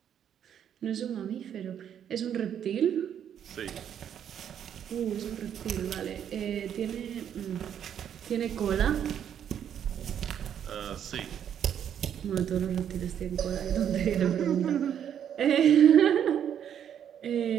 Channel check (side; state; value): left; quieter; 9.2 dB